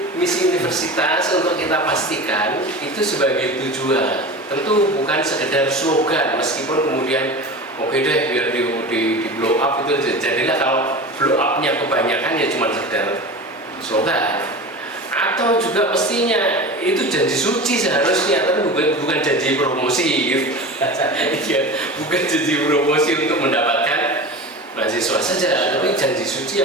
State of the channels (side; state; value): both; normal; correlation 0.31